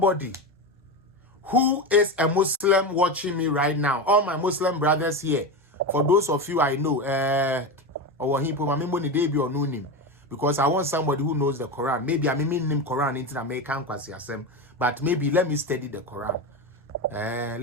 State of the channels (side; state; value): both; normal; correlation 0.19